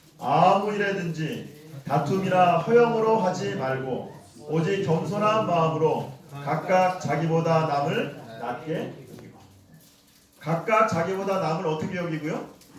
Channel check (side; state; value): both; identical; correlation 1.00